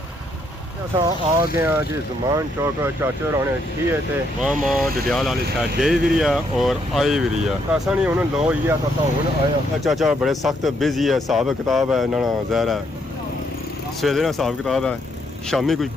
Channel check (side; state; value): both; normal; correlation 0.74